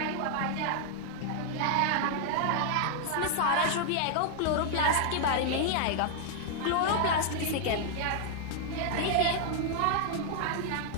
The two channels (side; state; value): both; different; correlation 0.00